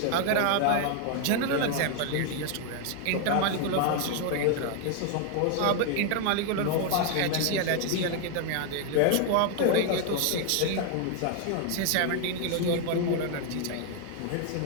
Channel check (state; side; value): different; both; correlation 0.00